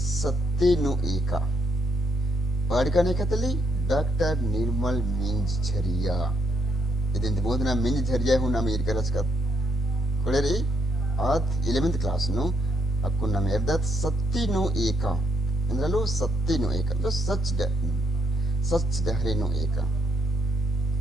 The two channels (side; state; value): both; normal; correlation 0.77